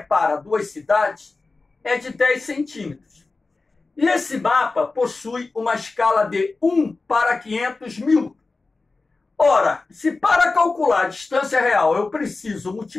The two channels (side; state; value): right; quieter; 3.7 dB